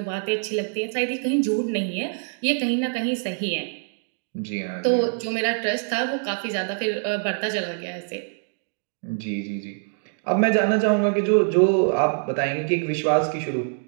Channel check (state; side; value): silent; left; 62 dB below the other